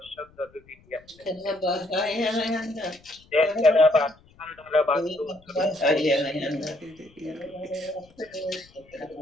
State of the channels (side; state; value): left; noise; rumble, 28 dB below the sound